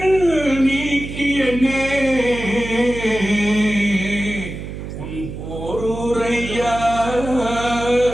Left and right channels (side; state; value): right; noise; hum, 9 dB below the sound